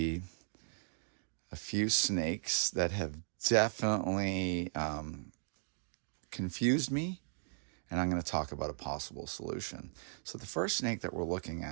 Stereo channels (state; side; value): silent; left; digital silence